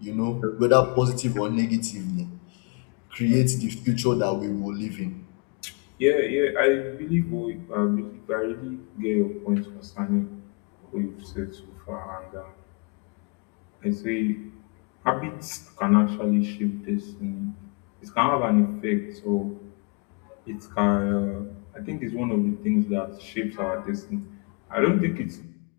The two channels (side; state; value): right; quieter; 35.0 dB